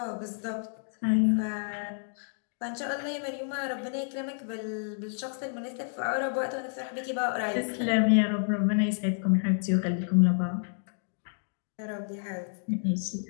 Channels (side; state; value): right; silent; digital silence